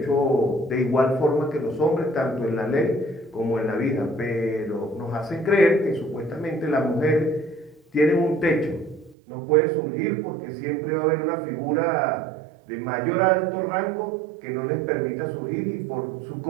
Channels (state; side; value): drops out; left; at 9.2 s